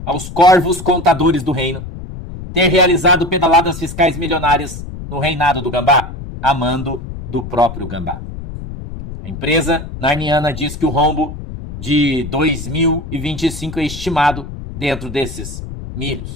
aos corvos contadores do reino ter realizado pedaladas fiscais milionárias no reinado do Gambá, a mando do próprio Gambá. A empresa narniana diz que o rombo de 2025 é estimado dentro desses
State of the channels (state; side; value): noise; left; rumble, 10 dB below the sound